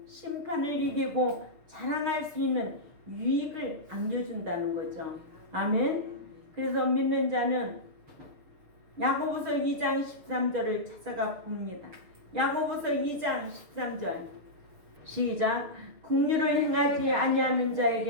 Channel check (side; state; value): left; late; 6.7 ms